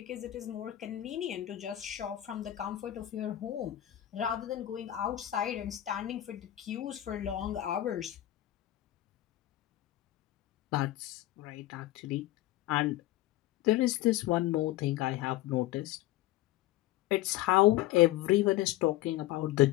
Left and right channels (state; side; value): quieter; right; 14.9 dB